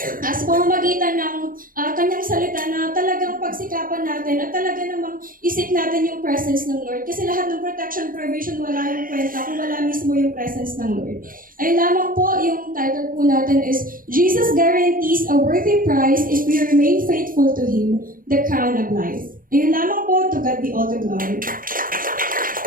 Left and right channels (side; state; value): left; late; 0.41 ms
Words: sa pamamagitan ng Kanyang salita na talagang pagsikapan natin at talaga namang isip natin yung presence ng Lord. Kasi lahat ng protection, provision, wala yung kwenta kung wala mismo yung presence ng Lord. Ayun lamang po, yung title po natin is Jesus guarantees a worthy prize if we remain faithful to Him, the crown of life. Ayun lamang po, to God be all the glory.